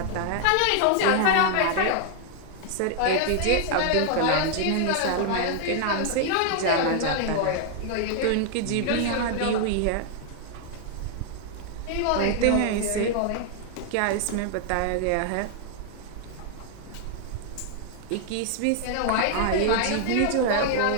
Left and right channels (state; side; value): different; both; correlation 0.00